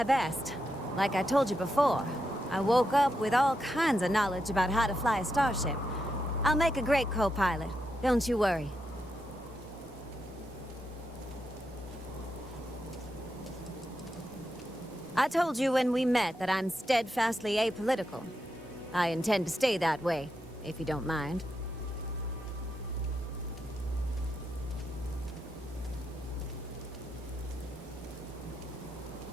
best. Like I told you before, I woke up with all kinds of knowledge about how to fly a starship. I'll make a great co-pilot. Don't you worry. I told you when we met that I'm steadfastly apolitical. I intend to stay that way, if you don't mind.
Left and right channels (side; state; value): both; normal; correlation 0.84